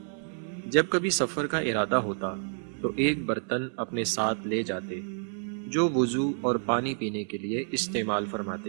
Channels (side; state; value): left; silent; 59 dB below the other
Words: جب کبھی سفر کا ارادہ ہوتا تو ایک برتن اپنے ساتھ لے جاتے جو وضو اور پانی پینے کے لیے استعمال